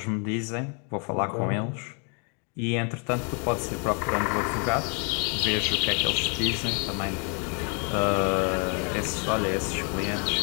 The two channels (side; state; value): right; quieter; 37.6 dB